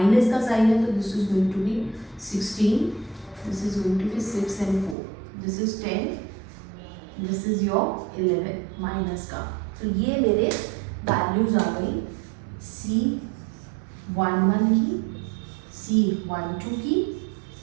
का साइन है तो this is going to be 16, this is going to be 6 and 4, this is 10, this is your 11 minus का। तो ये मेरे वैल्यूज आ गई C11 की, C12 की,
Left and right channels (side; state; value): left; drops out; at 5.0 s